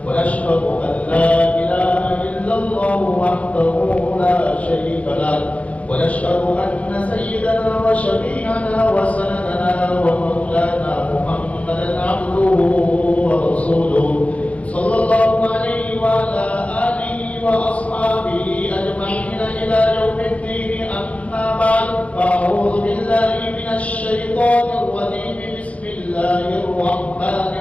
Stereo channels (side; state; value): right; late; 0.065 ms